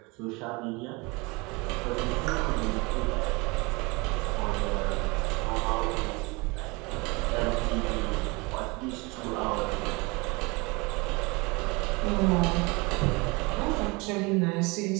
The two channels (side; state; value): left; quieter; 26.4 dB